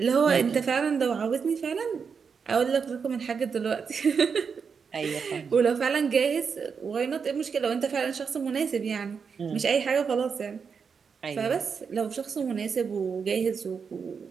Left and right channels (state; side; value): quieter; left; 6.0 dB